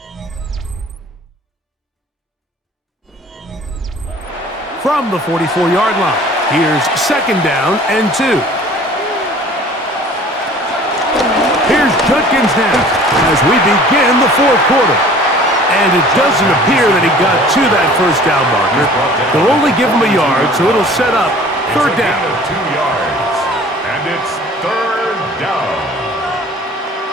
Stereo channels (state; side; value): normal; both; correlation 0.48